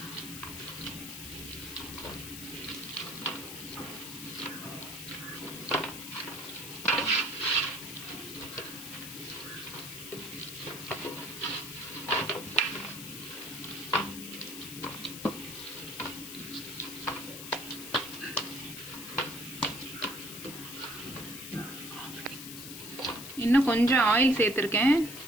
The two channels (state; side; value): noise; left; hiss, 9 dB below the sound